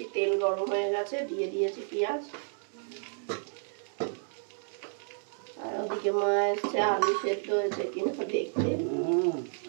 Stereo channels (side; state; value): left; silent; digital silence